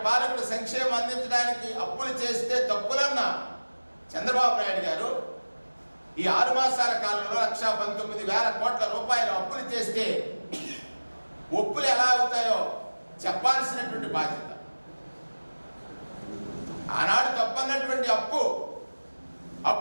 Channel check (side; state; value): both; inverted; correlation -1.00